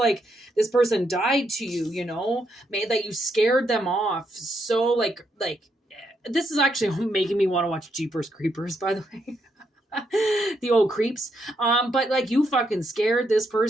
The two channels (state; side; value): normal; both; correlation 0.78